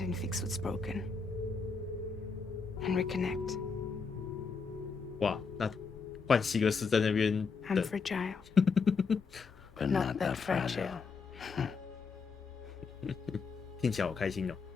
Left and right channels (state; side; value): quieter; right; 5.0 dB